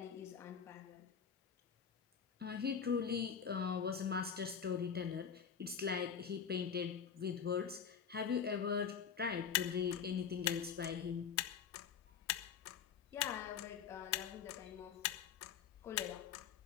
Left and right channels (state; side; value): quieter; right; 7.3 dB